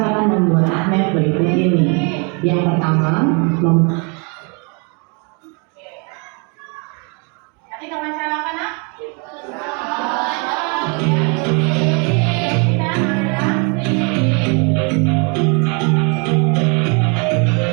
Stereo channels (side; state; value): left; quieter; 34.4 dB